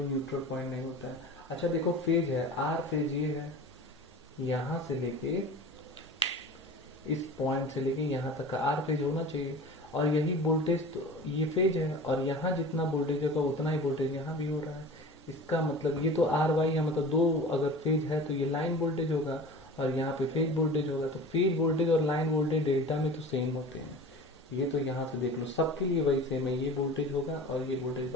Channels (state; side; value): normal; both; correlation 0.37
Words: न्यूट्रल पॉइंट नहीं होता है। अच्छा देखो, फेज है, आर फेज ये है, यहाँ से लेके इस पॉइंट से लेके यहाँ तक का आर फेज होना चाहिए, और यही वोल्टेज तो ये फेज है, और यहाँ जितना वोल्टेज होगा उतना ही वोल्टेज यहाँ भी हो रहा है। इसका मतलब ये तो आर वाई है, मतलब दो अगर फेज है तो ये लाइन वोल्टेज होगा, और यहाँ पे फेज वोल्टेज होगा। तो फेज वोल्टेज और लाइन वोल्टेज डेल्टा में तो सेम होते हैं। ये तो यहाँ से देख लो, सबके लिए वही सेम है, ये वोल्टेज होगा और ये वोल्टेज